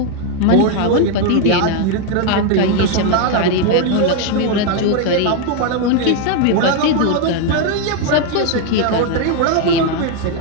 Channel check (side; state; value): both; different; correlation 0.01